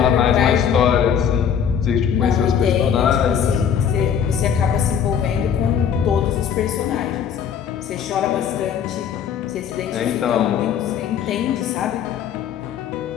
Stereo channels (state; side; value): quieter; right; 8.0 dB